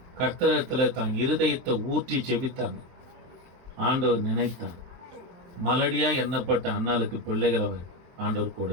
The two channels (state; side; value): late; left; 23 ms